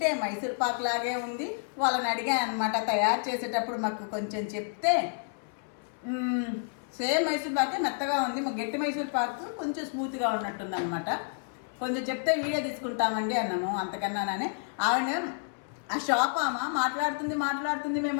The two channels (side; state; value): right; silent; 58 dB below the other